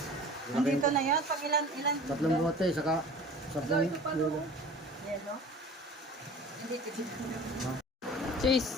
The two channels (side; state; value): both; normal; correlation 0.42